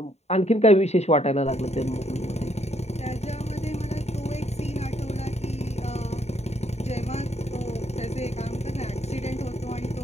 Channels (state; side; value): late; right; 0.31 ms